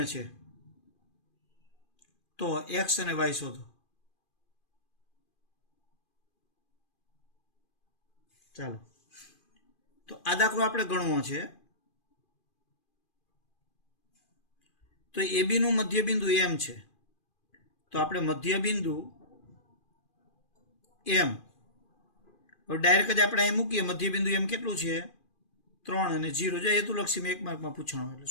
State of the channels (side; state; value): right; late; 2.4 ms